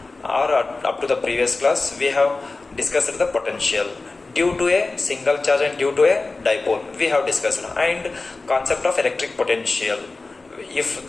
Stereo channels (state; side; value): quieter; right; 3.5 dB